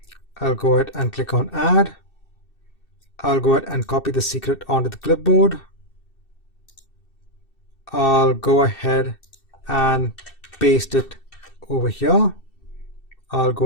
I'll go ahead and click on add. I'll go ahead and copy the secret onto the clipboard. I'll go ahead and paste it over here. I'll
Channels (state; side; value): late; right; 2.7 ms